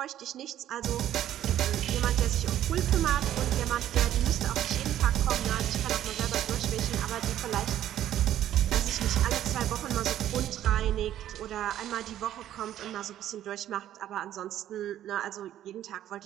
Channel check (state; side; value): quieter; left; 11.9 dB